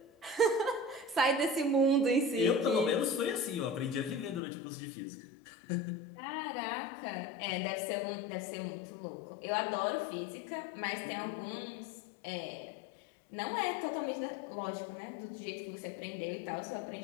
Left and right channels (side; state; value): right; drops out; at 4.4 s